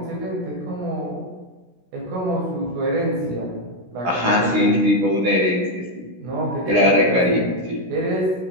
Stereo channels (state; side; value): late; left; 16 ms